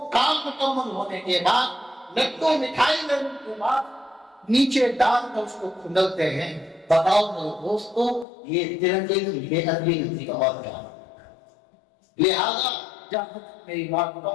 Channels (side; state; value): right; drops out; at 8.2 s